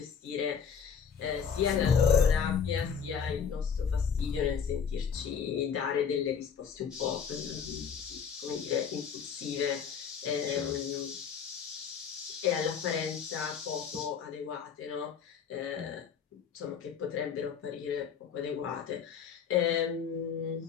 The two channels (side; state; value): right; quieter; 7.0 dB